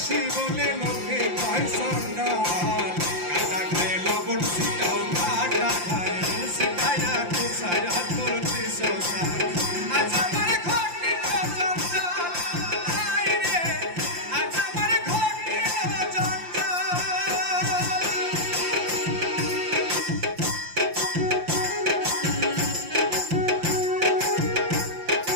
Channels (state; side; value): late; left; 5.7 ms